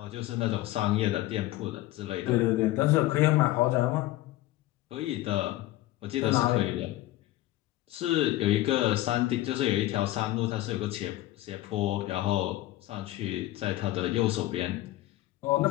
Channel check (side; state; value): right; quieter; 16.3 dB